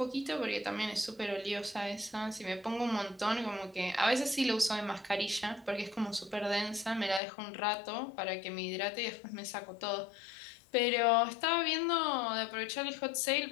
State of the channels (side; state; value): right; drops out; at 7.2 s